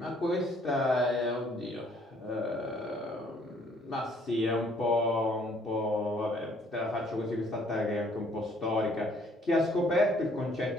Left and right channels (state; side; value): normal; both; correlation 0.62